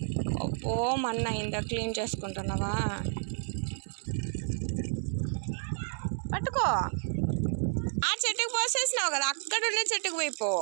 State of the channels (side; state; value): left; silent; digital silence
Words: ఓ మన్న అయిందా, క్లీన్ చేసుకుంటున్నావా? పట్టుకో. ఆ చెట్టుకు పోసేసినావు కదా, అక్కడ ఉండే చెట్టుకు పోయిపో